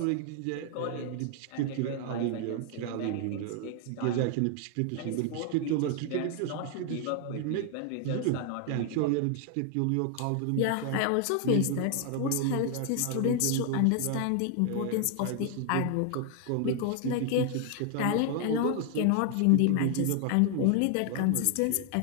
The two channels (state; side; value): different; both; correlation 0.00